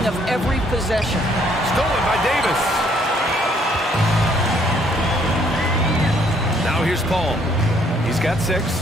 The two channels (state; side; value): normal; both; correlation 0.65